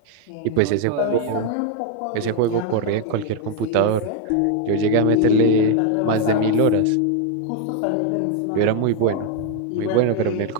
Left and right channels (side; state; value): both; different; correlation 0.01